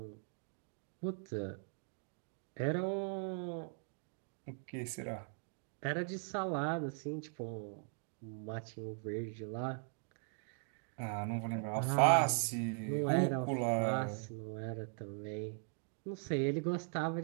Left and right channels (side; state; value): left; silent; 51 dB below the other